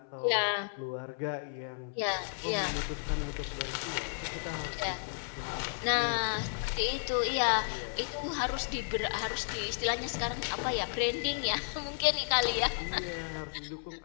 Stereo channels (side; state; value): right; silent; 56 dB below the other